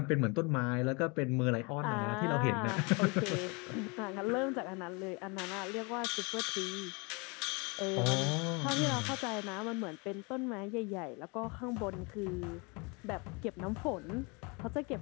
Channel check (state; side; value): quieter; right; 29.8 dB